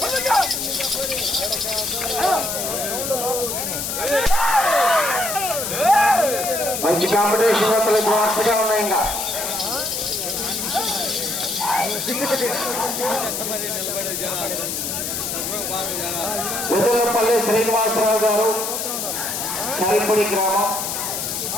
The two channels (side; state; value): left; noise; hiss, 3 dB below the sound